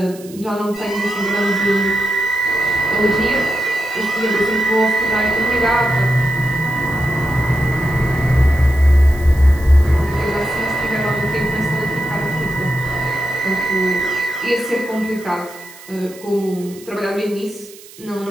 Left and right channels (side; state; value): right; noise; hiss, 20 dB below the sound